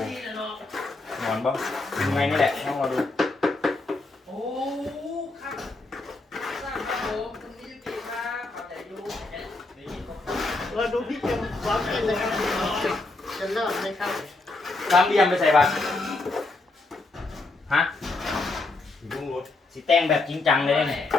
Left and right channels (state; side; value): quieter; right; 3.2 dB